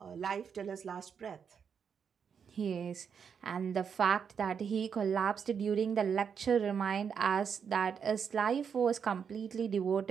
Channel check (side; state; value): left; quieter; 6.9 dB